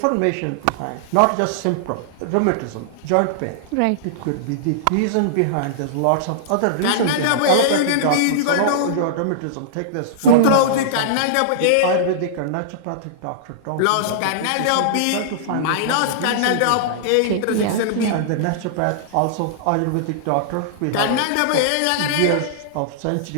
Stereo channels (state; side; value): different; both; correlation -0.02